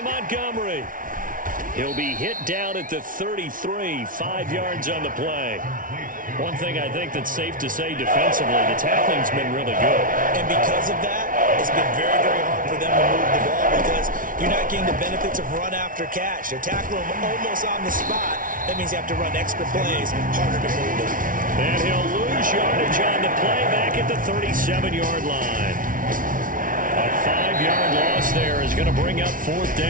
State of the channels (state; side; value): late; left; 0.39 ms